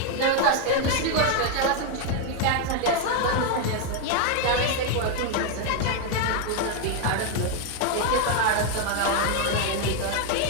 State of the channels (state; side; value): different; both; correlation 0.01